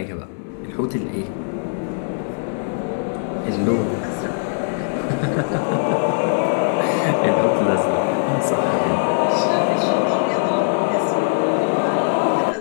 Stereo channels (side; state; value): right; silent; digital silence